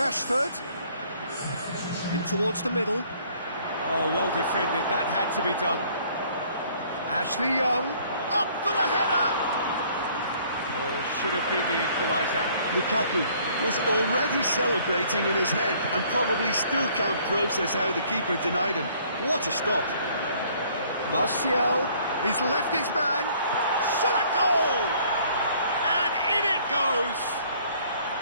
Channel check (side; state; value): both; inverted; correlation -0.59